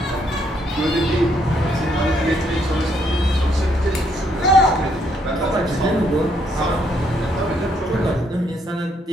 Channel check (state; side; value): normal; both; correlation 0.72